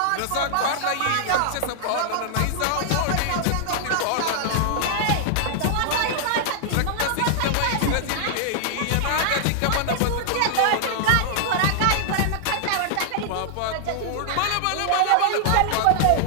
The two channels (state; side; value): different; both; correlation -0.01